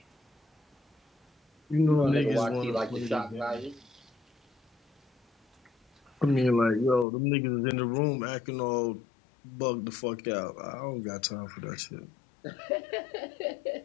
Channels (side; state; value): right; drops out; at 7.1 s